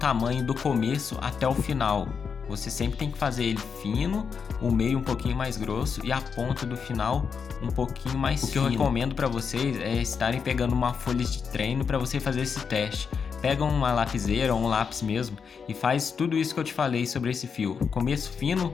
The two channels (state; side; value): quieter; right; 6.2 dB